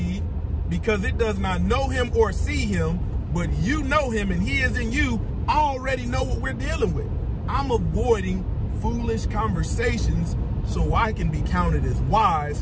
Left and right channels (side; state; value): both; identical; correlation 1.00